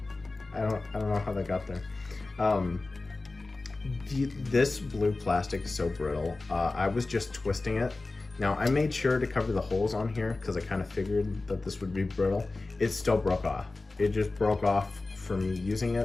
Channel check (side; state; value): right; quieter; 3.3 dB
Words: I don't know how that got there. This blue plastic is so brittle. I was just twisting it. Now I made sure to cover the holes on here because I kind of figured that this would be brittle. It still broke off. It just broke off from me using